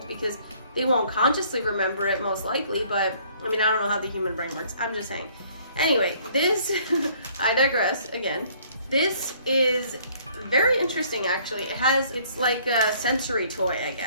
because they won't consciously remember it most likely, but I mean, I don't know how the human brain works. I'm just saying. Anyway, this, I digress again. This is very interesting actually. It's like a sensory toy, I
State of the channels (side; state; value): both; inverted; correlation -0.60